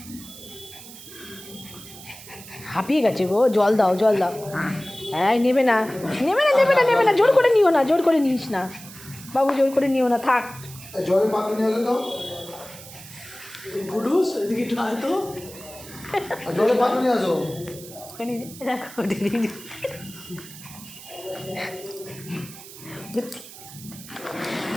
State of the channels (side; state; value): right; noise; hiss, 16 dB below the sound